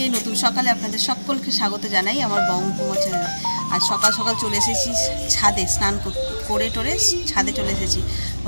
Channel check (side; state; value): both; inverted; correlation -1.00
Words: নতুন সকালে আপনাদের সকলকে স্বাগত জানাই আমার বঙ্গকুমার চ্যানেলে। আজ সকাল সকাল চলে এসেছি ছাদে, স্নান করে টোরে ছাদে চলে এসেছি।